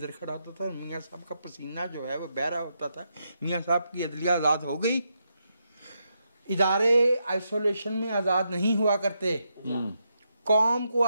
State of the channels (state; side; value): inverted; both; correlation -0.82